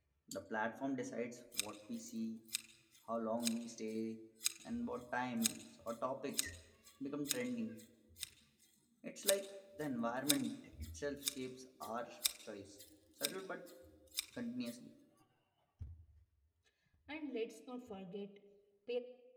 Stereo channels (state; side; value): identical; both; correlation 1.00